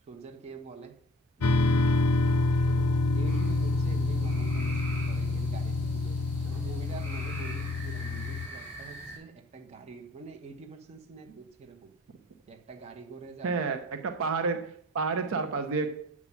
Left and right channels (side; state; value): both; normal; correlation 0.54